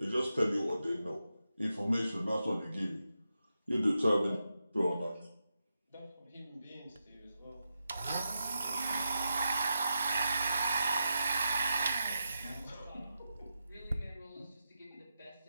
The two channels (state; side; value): inverted; both; correlation -0.88